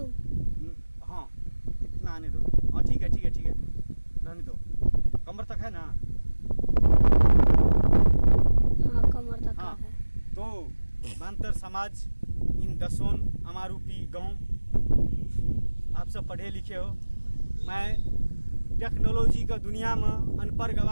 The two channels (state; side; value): inverted; both; correlation -1.00